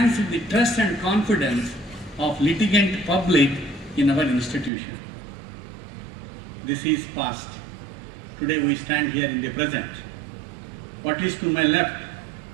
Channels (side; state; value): left; drops out; at 4.7 s